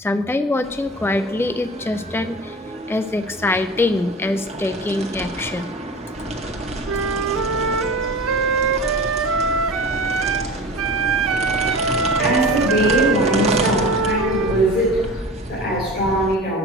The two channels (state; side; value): normal; both; correlation 0.36